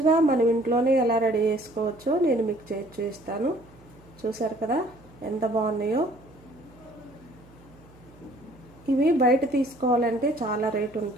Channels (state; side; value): noise; right; hum, 25 dB below the sound